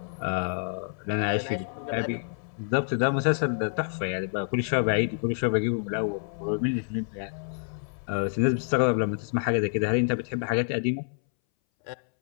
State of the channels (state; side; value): silent; right; 60 dB below the other